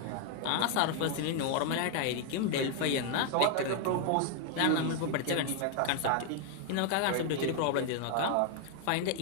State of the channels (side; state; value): both; different; correlation 0.00